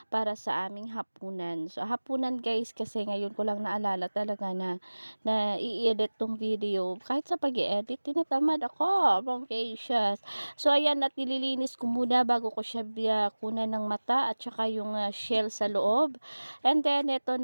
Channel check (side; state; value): both; inverted; correlation -1.00